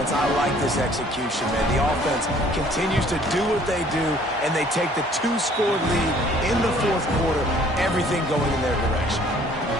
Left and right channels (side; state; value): both; normal; correlation 0.57